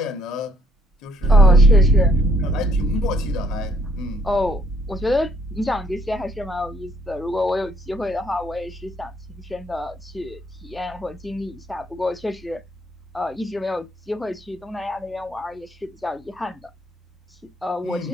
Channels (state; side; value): normal; both; correlation 0.67